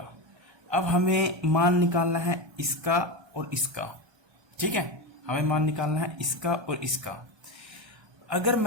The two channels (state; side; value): late; left; 1.2 ms